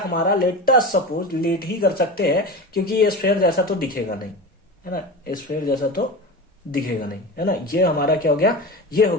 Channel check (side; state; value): both; normal; correlation 0.27